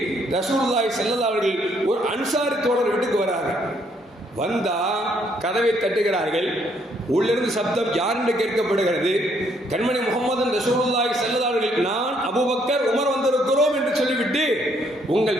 ரசூலுல்லாஹி ஸல்லல்லாஹு அலைஹி வஸல்லம் ஒரு அன்சாரி தோழர் வீட்டுக்கு வராங்க. வந்தா கதவை தட்டுகிறார்கள். உள்ளிருந்து சப்தம் யார் என்று கேட்கப்படுகிறது. கண்மணி முஹம்மது ரசூலுல்லாஹி ஸல்லல்லாஹு அலைஹி வஸல்லம், நான் அபூபக்கர் உமர் வந்திருக்கிறோம் என்று சொல்லிவிட்டு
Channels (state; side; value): normal; both; correlation 0.69